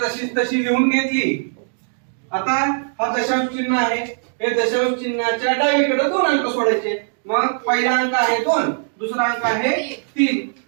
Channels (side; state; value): left; silent; digital silence